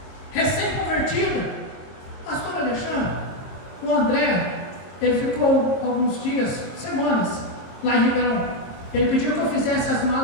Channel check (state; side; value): late; right; 22 ms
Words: recém-convertida. Pastor Alexandre, o André, ele ficou alguns dias, semanas, lá em Ribeirão. Ele pediu que eu fizesse as